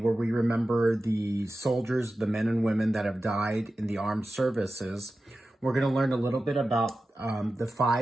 we remember the soldiers, the men and women that have died in the armed services, we're going to learn a little bit about the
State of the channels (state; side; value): normal; both; correlation 0.94